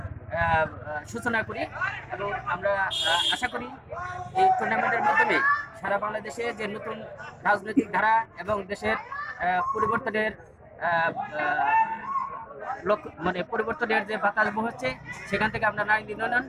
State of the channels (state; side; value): identical; both; correlation 1.00